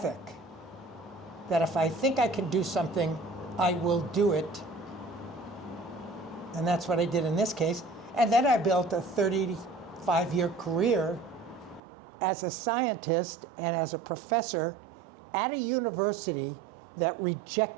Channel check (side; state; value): left; drops out; at 11.8 s